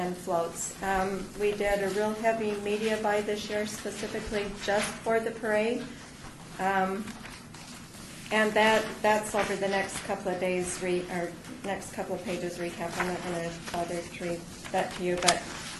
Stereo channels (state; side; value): identical; both; correlation 1.00